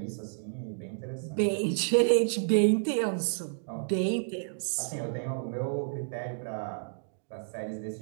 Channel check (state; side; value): silent; left; digital silence